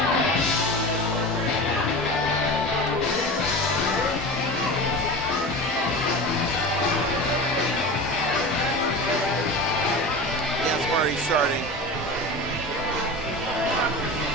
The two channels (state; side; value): normal; both; correlation 0.30